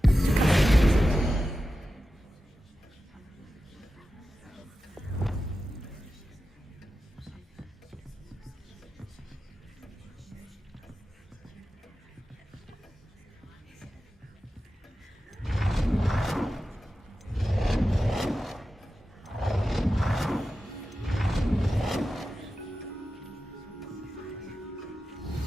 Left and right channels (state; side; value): normal; both; correlation 0.93